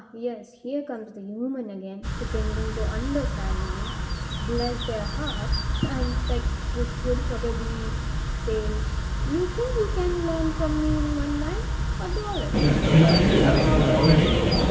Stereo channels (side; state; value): both; identical; correlation 1.00